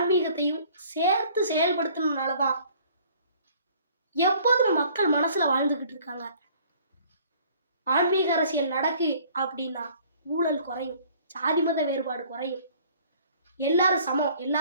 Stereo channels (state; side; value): inverted; both; correlation -0.55